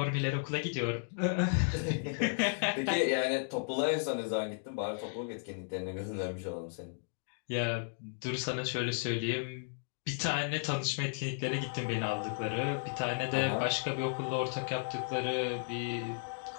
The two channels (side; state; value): right; silent; digital silence